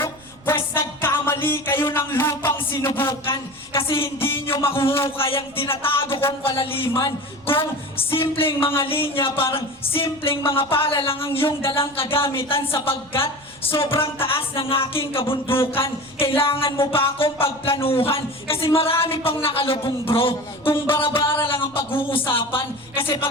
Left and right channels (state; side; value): noise; right; rumble, 26 dB below the sound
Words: Pwes nagkamali kayo ng lupang sinubukan kasi hindi nyo makuhukay ang tinatago kong kalaliman. Kung simpleng mga linya, parang simpleng mga pala lang ang iyong dalang kagamitan sapagkat sobrang taas ng aking kabundukan. Kailangan mo pa akong pagplanuhan kasi marami pang nakalubong bro. Kung bara-bara lang ang pag-uusapan kasi